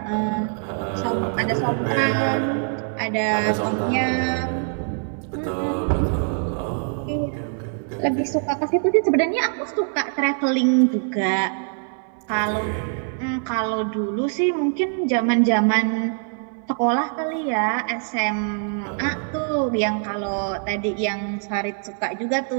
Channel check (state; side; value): silent; left; 55 dB below the other